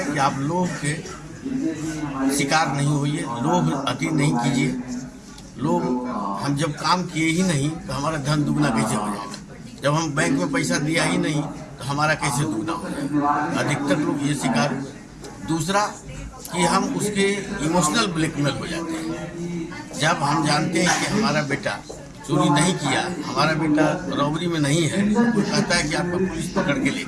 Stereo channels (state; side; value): identical; both; correlation 1.00